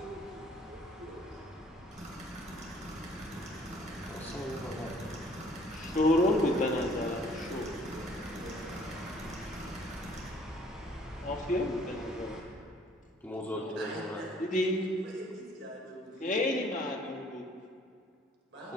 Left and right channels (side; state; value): both; normal; correlation 0.59